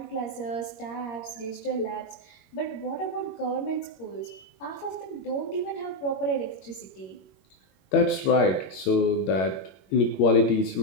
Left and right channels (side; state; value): right; late; 21 ms